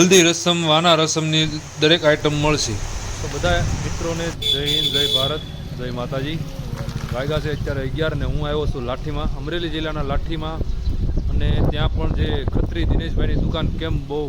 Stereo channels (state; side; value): identical; both; correlation 1.00